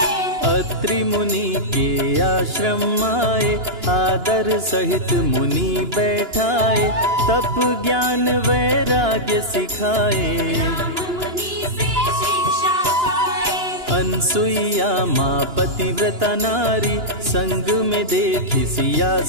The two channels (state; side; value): late; left; 2.9 ms